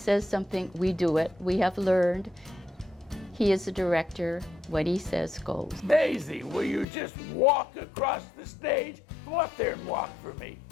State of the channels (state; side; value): drops out; right; at 6.9 s